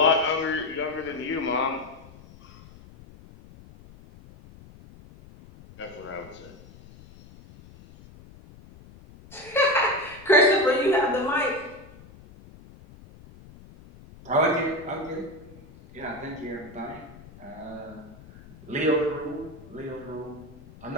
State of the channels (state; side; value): noise; left; rumble, 21 dB below the sound